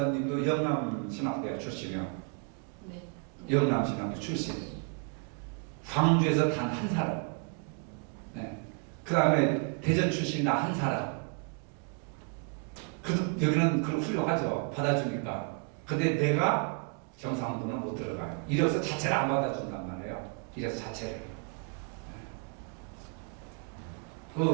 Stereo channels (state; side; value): quieter; left; 38.1 dB